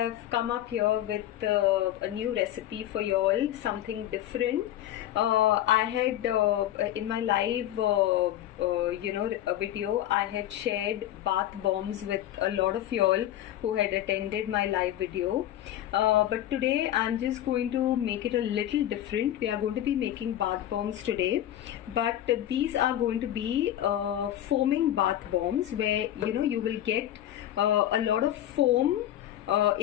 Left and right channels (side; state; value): right; quieter; 12.4 dB